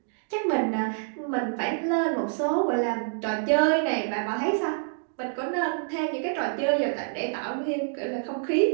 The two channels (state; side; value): silent; left; digital silence